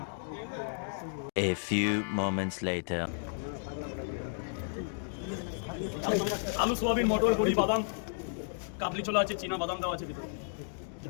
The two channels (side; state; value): right; silent; digital silence